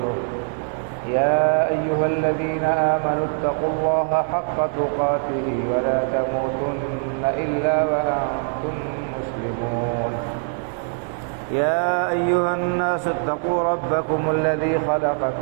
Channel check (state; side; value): silent; left; digital silence